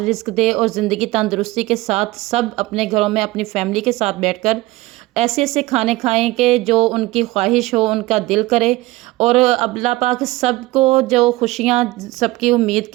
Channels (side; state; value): left; quieter; 19.5 dB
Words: रिस्क दे और ज़िंदगी तंदुरुस्ती के साथ सब अपने घरों में अपनी फैमिली के साथ बैठकर ऐसे ऐसे खाने खाएं कि जो उनकी ख्वाहिश हो, उनका दिल करे। और अल्लाह पाक सबको जो खुशियाँ सबकी उम्मीद